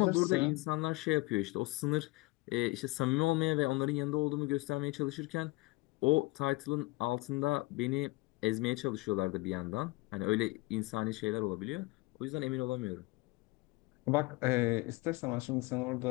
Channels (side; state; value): right; quieter; 22.6 dB